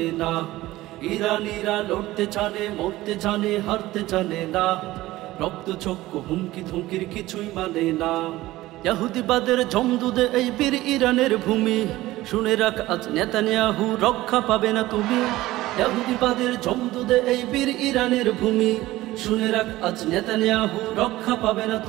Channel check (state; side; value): quieter; left; 17.2 dB